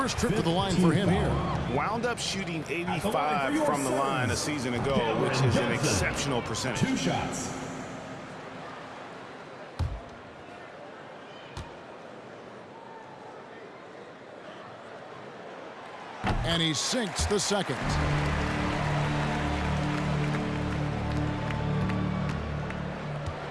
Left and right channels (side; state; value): both; identical; correlation 1.00